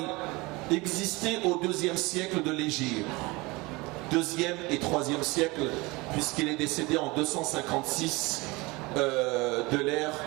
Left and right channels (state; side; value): quieter; left; 23.8 dB